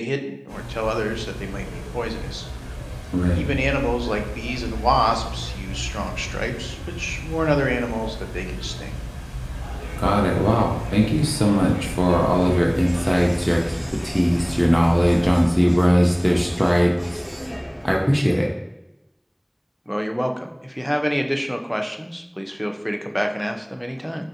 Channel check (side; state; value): both; identical; correlation 1.00